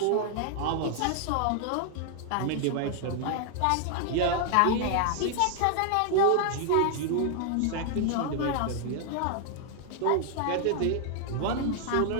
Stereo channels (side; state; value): both; different; correlation 0.00